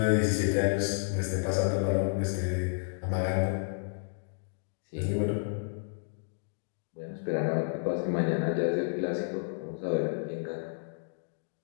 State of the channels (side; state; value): right; silent; digital silence